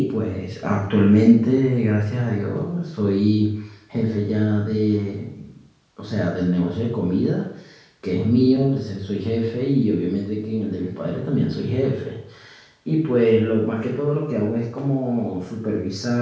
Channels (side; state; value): both; identical; correlation 1.00